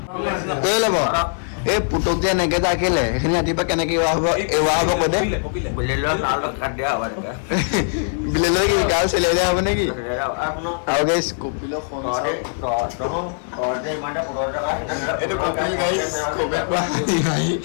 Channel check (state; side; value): silent; right; 65 dB below the other